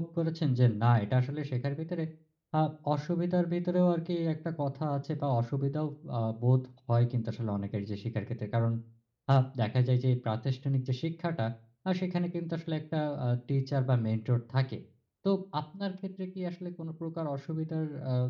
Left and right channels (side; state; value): both; identical; correlation 1.00